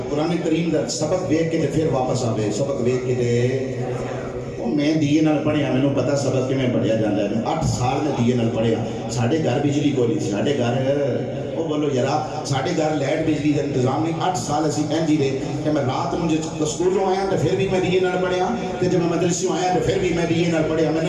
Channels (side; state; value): both; identical; correlation 1.00